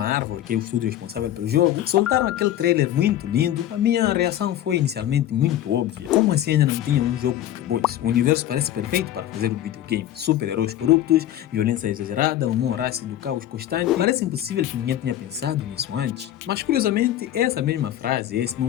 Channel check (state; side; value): quieter; right; 12.2 dB